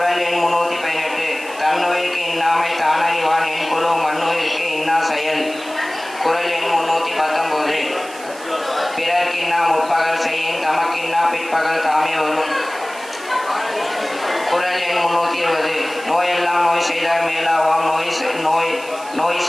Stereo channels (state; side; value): noise; right; hiss, 18 dB below the sound